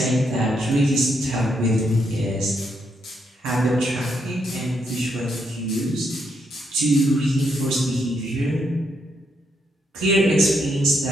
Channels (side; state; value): both; normal; correlation 0.77